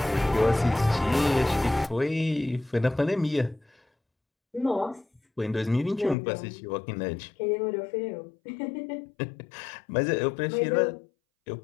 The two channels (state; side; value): drops out; right; at 6.2 s